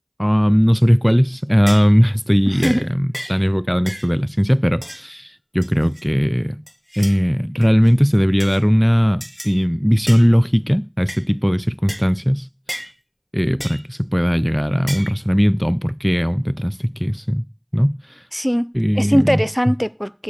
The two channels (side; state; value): both; identical; correlation 1.00